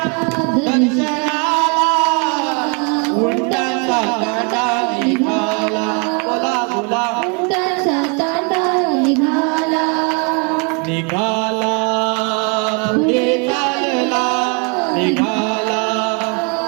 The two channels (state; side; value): quieter; left; 34.5 dB